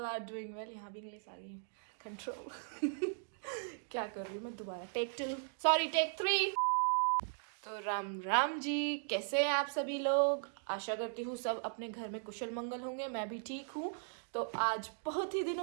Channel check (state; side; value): silent; left; digital silence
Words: are doing well. यहाँ भी इंग्लिश आ गई है, कंट्रोल। क्या कर रही हूँ मैं? दोबारा टेक 3। तो राम राम जी, कैसे हैं आप सभी लोग? आशा करती हूँ सब अपने घर में कुशल मंगल होंगे। मैं भी ठीक हूँ। तो आज बहुत ही